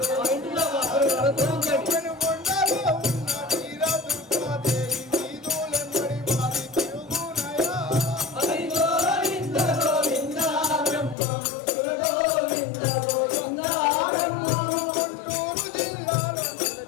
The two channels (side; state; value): right; drops out; at 11.2 s